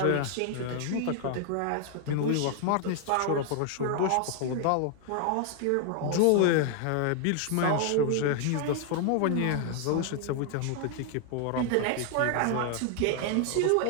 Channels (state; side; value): different; both; correlation 0.00